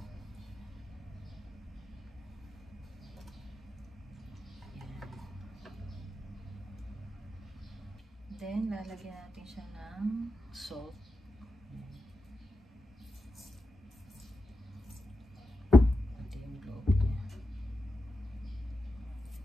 Ayan. Then lalagyan natin siya ng salt.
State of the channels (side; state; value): both; normal; correlation 0.89